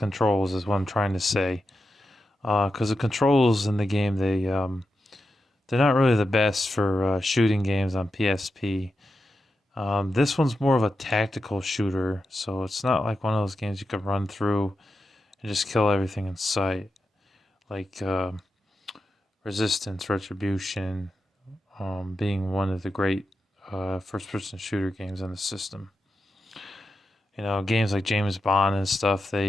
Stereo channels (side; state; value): both; normal; correlation 0.89